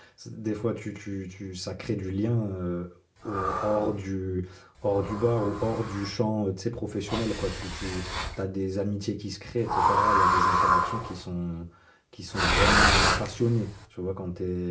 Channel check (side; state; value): both; identical; correlation 1.00